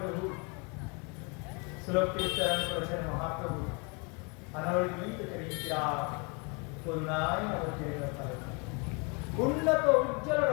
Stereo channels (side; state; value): right; quieter; 32.3 dB